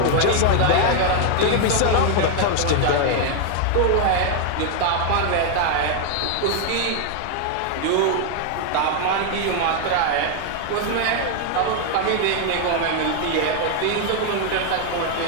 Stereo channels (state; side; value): different; both; correlation 0.00